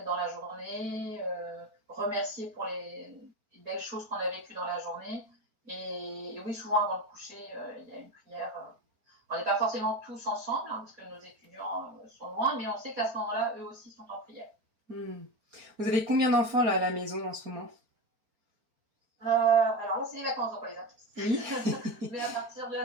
dans la journée, remercier pour les belles choses qu'on a vécues dans la journée. Et oui, souvent avant le coucher, il y a une prière. On n'est pas forcément tous ensemble, hein, parce que nos étudiants sont loin, mais on sait qu'à ce moment-là, eux aussi sont en prière. Vous avez combien d'enfants là à la maison en ce moment? Alors là, c'est les vacances, donc on les a tous. Oui. Mais à partir de la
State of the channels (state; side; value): late; left; 4.4 ms